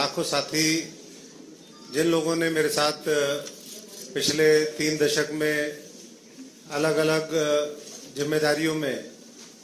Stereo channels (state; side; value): identical; both; correlation 1.00